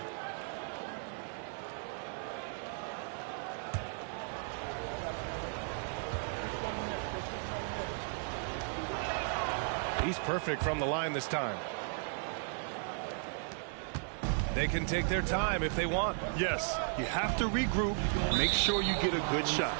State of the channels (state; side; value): silent; left; 54 dB below the other